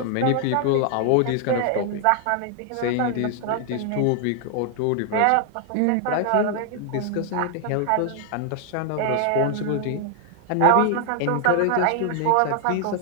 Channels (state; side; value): different; both; correlation 0.00